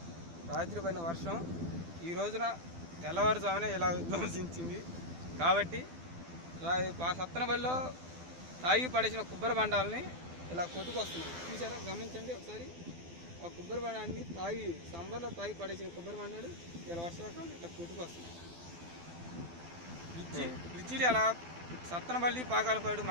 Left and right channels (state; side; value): late; left; 12 ms